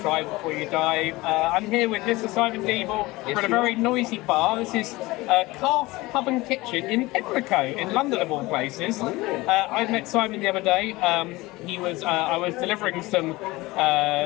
try before you die. I'm here with Mr. Simon Deeble for a very noisy bar. This is Calf Pub and Kitchen in Pimlico, in London of all places. I met Simon the other day. I was delivering some,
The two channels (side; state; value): right; quieter; 20.7 dB